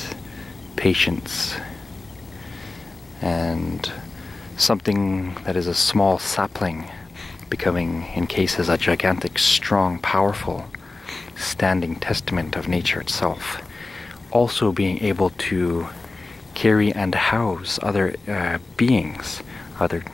patience, and something that is a small sapling becoming, in cases, a gigantic, strong, powerful, standing testament of nature itself. Also being able to carry and house other beings, other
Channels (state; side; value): quieter; right; 3.4 dB